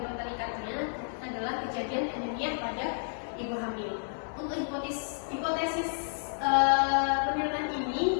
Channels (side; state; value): right; silent; 57 dB below the other